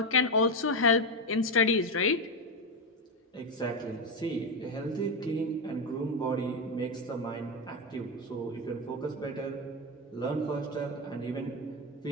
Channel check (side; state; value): both; normal; correlation 0.11